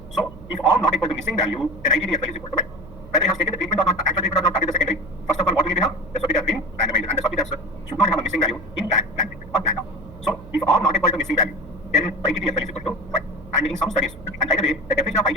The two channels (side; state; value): right; noise; hum, 17 dB below the sound